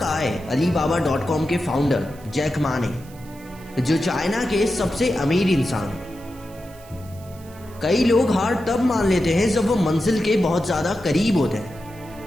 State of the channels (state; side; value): noise; right; hiss, 24 dB below the sound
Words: है Alibaba.com के फाउंडर जैक मा ने, जो चाइना के सबसे अमीर इंसान हैं। कई लोग हार तब मान लेते हैं जब वो मंजिल के बहुत ज्यादा करीब होते